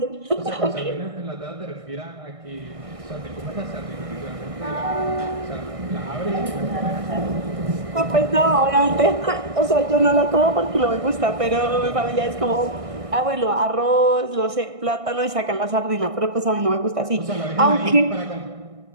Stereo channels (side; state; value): left; late; 1.6 ms